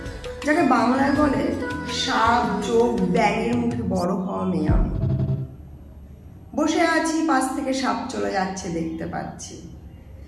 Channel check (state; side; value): identical; both; correlation 1.00